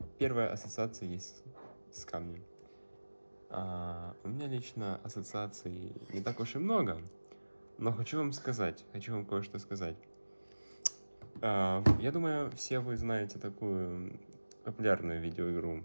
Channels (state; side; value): inverted; both; correlation -1.00